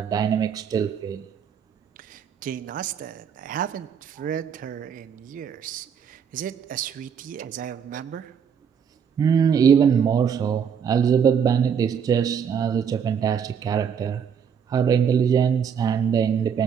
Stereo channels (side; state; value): left; quieter; 7.4 dB